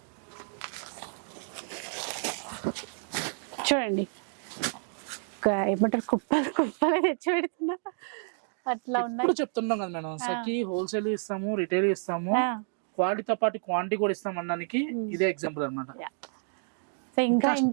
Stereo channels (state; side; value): silent; left; 58 dB below the other